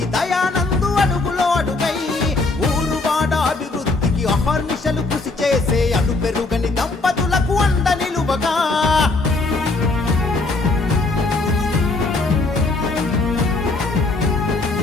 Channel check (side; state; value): right; quieter; 3.4 dB